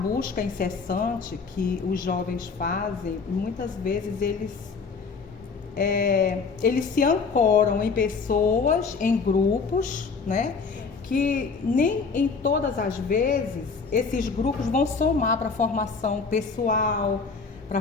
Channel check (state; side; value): quieter; right; 4.9 dB